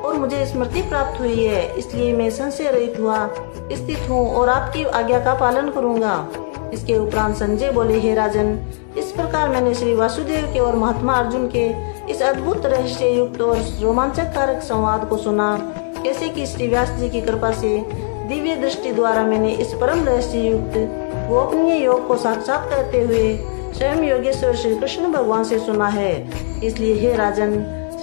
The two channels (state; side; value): silent; right; digital silence